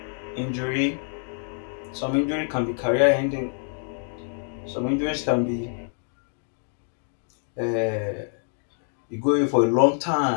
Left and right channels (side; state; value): right; silent; 61 dB below the other